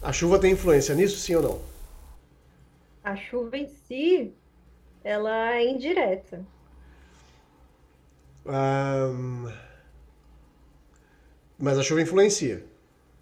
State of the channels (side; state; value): both; identical; correlation 1.00